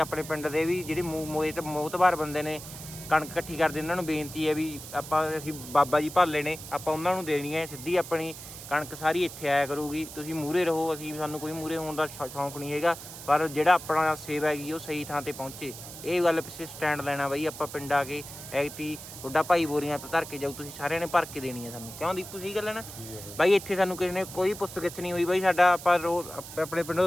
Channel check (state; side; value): noise; right; hiss, 13 dB below the sound